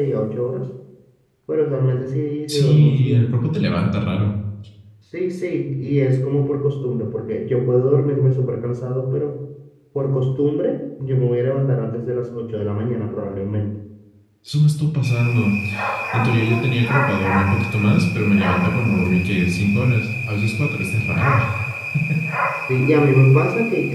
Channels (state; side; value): identical; both; correlation 1.00